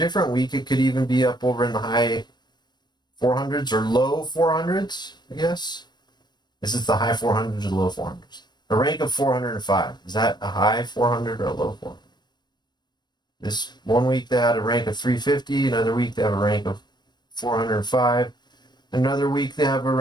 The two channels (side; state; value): right; late; 0.21 ms